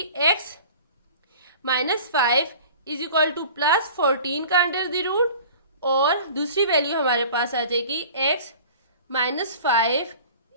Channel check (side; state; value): both; inverted; correlation -0.43